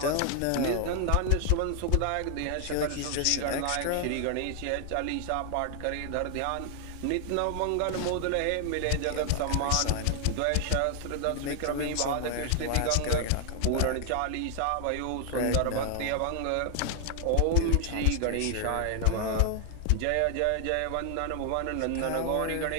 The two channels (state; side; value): different; both; correlation 0.00